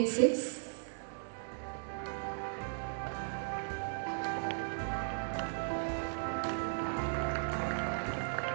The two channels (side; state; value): left; silent; 53 dB below the other